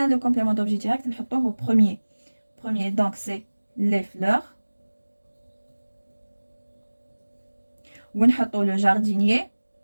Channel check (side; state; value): both; inverted; correlation -1.00